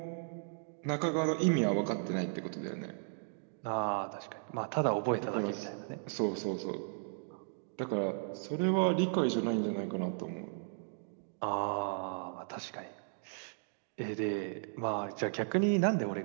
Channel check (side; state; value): left; silent; digital silence